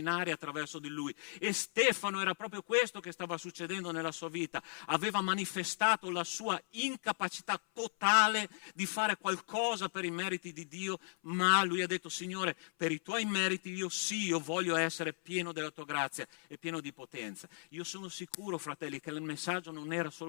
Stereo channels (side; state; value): right; silent; 54 dB below the other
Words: attraverso di lui. E Stefano era proprio questo che stava succedendo nella sua vita. Aveva manifestato la sua incapacità totale di fare qualcosa per i meriti di Dio, ma lui ha detto: Signore, per i tuoi meriti io voglio essere pieno della tua grazia e pieno di potenza. Io sono sicuro, fratelli, che il messaggio non era